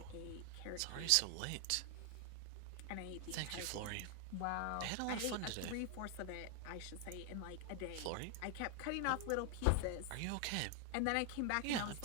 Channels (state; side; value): different; both; correlation 0.00